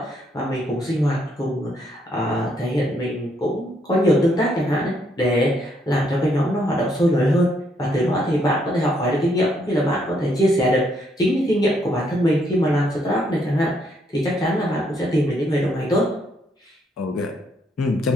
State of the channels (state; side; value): normal; both; correlation 0.73